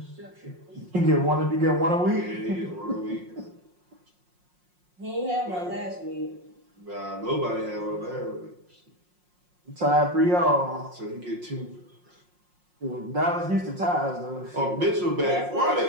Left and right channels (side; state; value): left; late; 5.6 ms